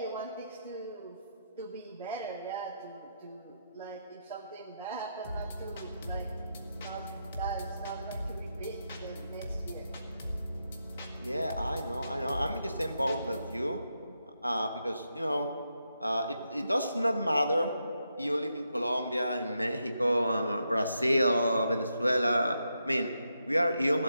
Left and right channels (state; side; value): inverted; both; correlation -0.84